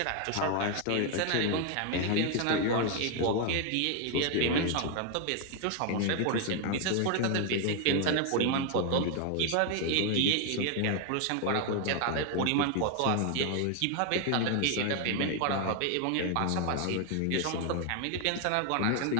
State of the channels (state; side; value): different; both; correlation 0.01